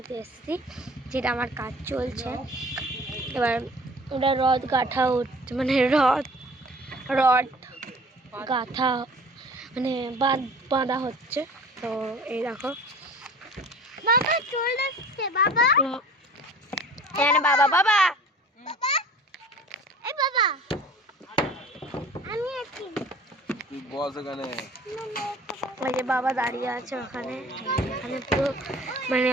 এসেছি, যেটা আমার কাজ চলছে। এবার ওটা রড গাঁথা হচ্ছে, মানে রড গাঁথা মানে বাঁধা হচ্ছে। তো এই দেখো বাবা চলে আসছে। বাবা বাবা বাবা এই বাবা আমি আছি, তুই বস এখানে। ওই যে বাবা দাঁড়িয়ে আছে ওখানে। এখানে পুরো মানে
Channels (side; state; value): both; normal; correlation 0.46